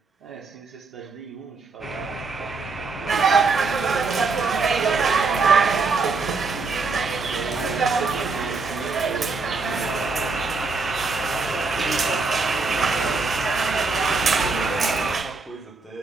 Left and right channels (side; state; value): left; quieter; 4.2 dB